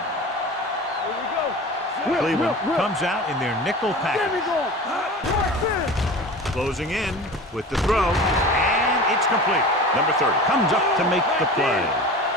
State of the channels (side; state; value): both; normal; correlation 0.35